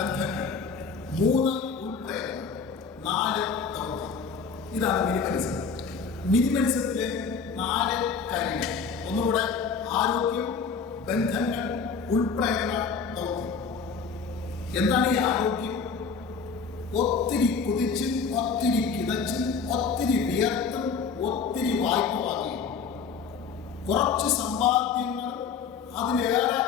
3 ഉൾപ്രേരണ, 4 ദൗത്യം. ഇതാണ് മിനിമലിസം. മിനിമലിസത്തിലെ 4 കാര്യങ്ങൾ. ഒന്നുകൂടെ: ആരോഗ്യം, ബന്ധങ്ങൾ, ഉൾപ്രേരണ, ദൗത്യം. എന്താണ് ഈ ആരോഗ്യം? ഒത്തിരി കുതിച്ചും ഒത്തിരി കിതച്ചും ഒത്തിരി വിയർത്തും ഒത്തിരി വായ്പ വാങ്ങി കുറച്ച് സമ്പാദ്യങ്ങൾ അതിലേറെ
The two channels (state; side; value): quieter; right; 5.5 dB